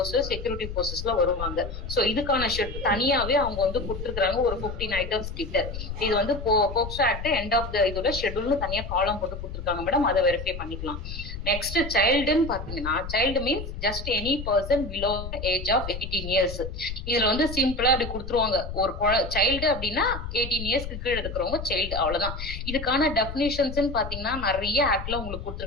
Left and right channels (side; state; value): left; noise; rumble, 8 dB below the sound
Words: செக்யூரிட்டி போர்சஸ்ல வருவாங்க. சோ இதுக்கான தனியாவே அவங்க வந்து கொடுத்துருக்காங்க ஒரு 15 ஐட்டம்ஸ் கிட்ட. இது வந்து POCSO act end of the இதோட ஷெட்யூல்னு தனியா காலம் போட்டு கொடுத்துருக்காங்க மேடம். அதை வெரிஃபை பண்ணிக்கலாம். நெக்ஸ்ட் சைல்டுன்னு பாத்தீங்கன்னா, child means just any person below age of 18 years. இதுல வந்து சிம்பிளா அப்படி கொடுத்துருவாங்க. ஒரு சைல்டு அப்படின்னா 18 இயர்ஸ்க்கு கீழே இருக்கிறவங்க சைல்டு, அவ்வளவுதான். இதுக்கான டெபினிஷன்ஸ் பாத்தீங்கன்னா நிறைய ஆக்ட்ல உங்களுக்கு